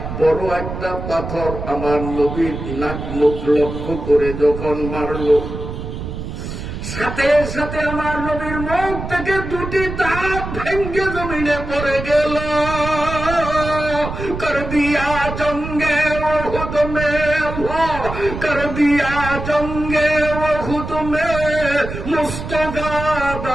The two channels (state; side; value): noise; right; rumble, 7 dB below the sound